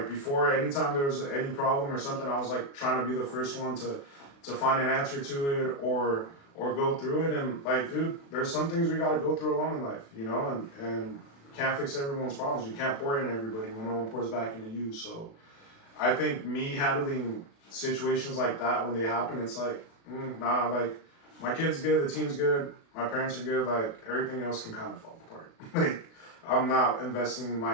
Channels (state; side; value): late; right; 36 ms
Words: before, anytime there was any problem or something, I was like trying to be the first one to find an answer to it or go through it. And like, dude, there's some things we got to go through alone in life, and can't fix everyone's problems. You can't pour into everybody when no one pours back into you. So I think me handling situations like that when they happen, it's like, nah, like my kid's good, the team's good, my parents are good, like everything else can kind of fall apart. Like I'm not investing my